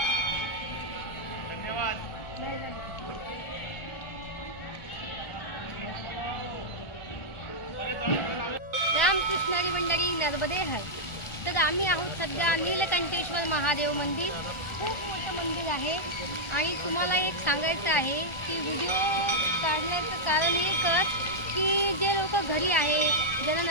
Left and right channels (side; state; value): right; late; 1.4 ms